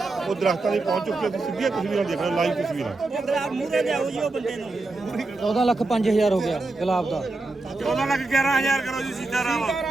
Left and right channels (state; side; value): quieter; left; 3.2 dB